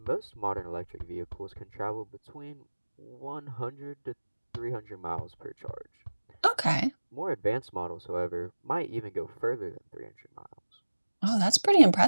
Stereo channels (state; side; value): inverted; both; correlation -1.00